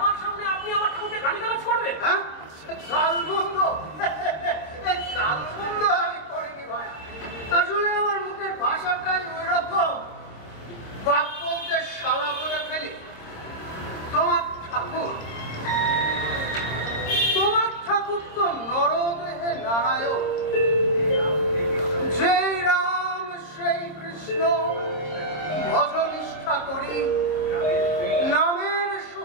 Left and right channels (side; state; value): right; late; 26 ms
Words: সামনে আপনি আমার ঠাকুরকে গালিগালাজ করবেন? হ্যাঁ, গালমন্দ গালমন্দ আমি করিনি ভাই। আসলে আমার মুখের ভাষাটাই ওই রকম, বাপ বলতে শালা বলে ফেলি। তোমার ঠাকুর তো নরদেহে নারায়ণ, যেই রাম সেই কৃষ্ণ ভজনিষ্ঠা করি, নামের